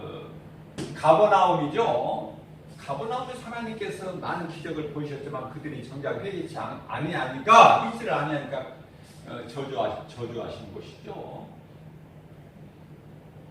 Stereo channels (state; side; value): identical; both; correlation 1.00